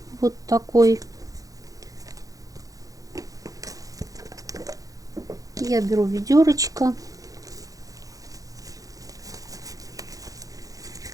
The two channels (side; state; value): left; late; 0.17 ms